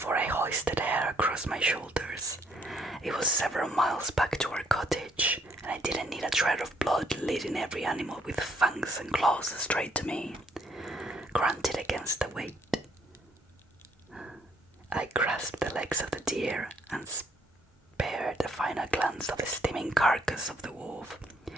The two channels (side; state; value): both; normal; correlation 0.68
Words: I hoisted her across my shoulders. It was several miles back to our cottage, and I didn't need a trail of blood leading every animal with fangs and claws straight to me. Grunted against the weight. I grasped the legs of the deer and spared a final glance of the steaming carcass of the wolf.